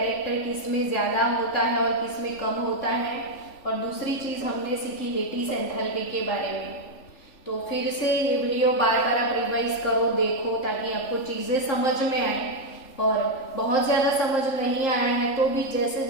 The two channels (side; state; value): right; late; 3.4 ms